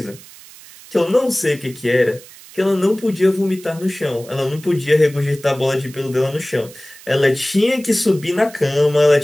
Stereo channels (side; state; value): right; noise; hiss, 20 dB below the sound